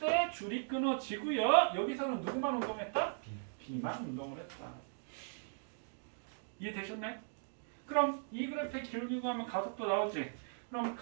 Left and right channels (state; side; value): silent; left; digital silence